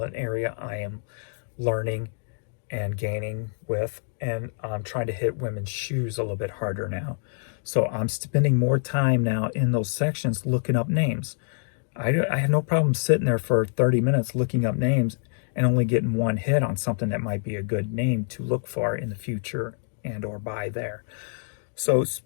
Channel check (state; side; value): silent; right; digital silence